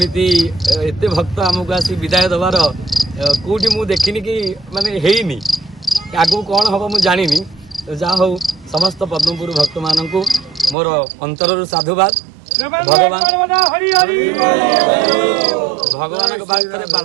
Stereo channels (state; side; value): drops out; left; at 10.8 s